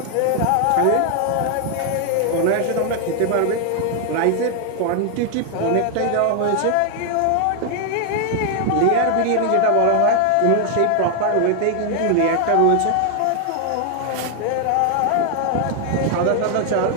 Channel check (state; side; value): different; both; correlation 0.00